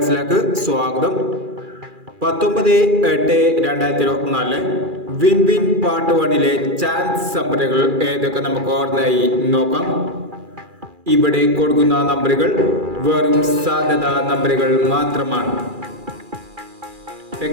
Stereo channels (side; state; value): left; late; 2.4 ms